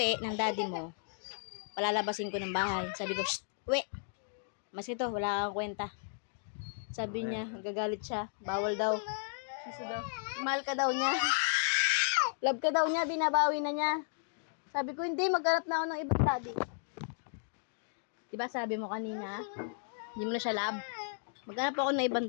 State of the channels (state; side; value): silent; right; digital silence